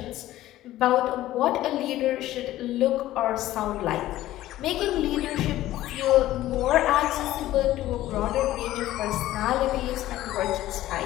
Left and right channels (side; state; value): right; quieter; 14.8 dB